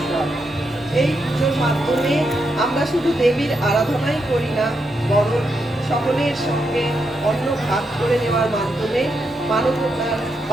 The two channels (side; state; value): both; normal; correlation 0.82